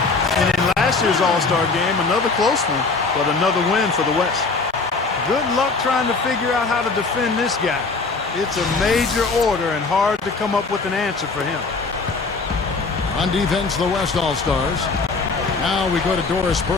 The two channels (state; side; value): quieter; right; 4.1 dB